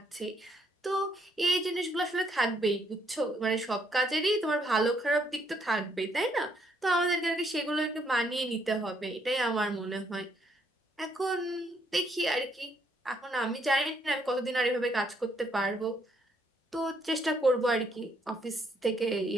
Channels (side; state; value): both; normal; correlation 0.71